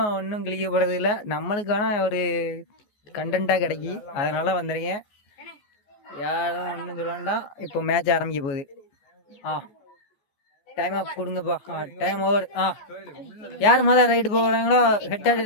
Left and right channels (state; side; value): late; right; 14 ms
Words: ஒன்றும் கிழிக்கப்படுறது இல்லை, நம்மளுக்கான ஒரு கண்டென்ட்டாக கிடைக்கி. அதனால் வந்துடுங்க, யாரும் ஒன்றும் சொல்ல வேண்டாம். இப்போ மேட்ச் ஆரம்பிக்க போகுது. டைம் அப் கொடுங்கப்பா. Time over. யார் முதல் ரைடு போகிறாங்களோ ஹெட் அண்ட்